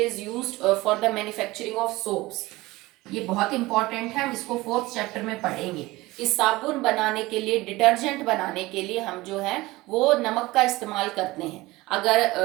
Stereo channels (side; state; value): left; quieter; 19.9 dB